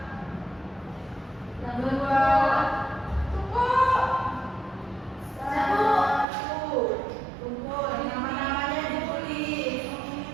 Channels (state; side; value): drops out; left; at 6.2 s